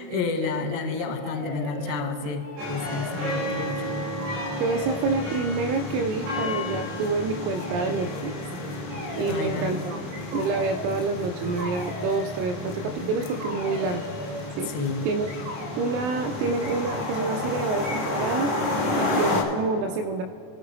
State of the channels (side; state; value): left; late; 27 ms